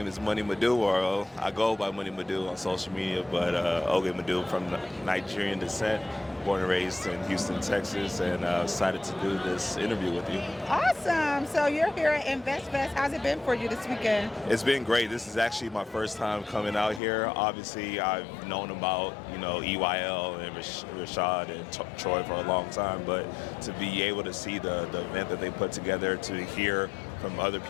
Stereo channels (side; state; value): right; drops out; at 17.0 s